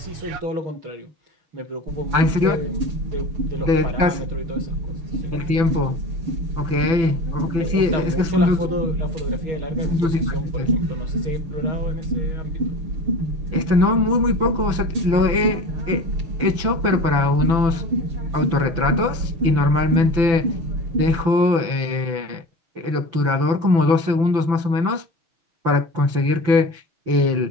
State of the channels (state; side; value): late; left; 6.0 ms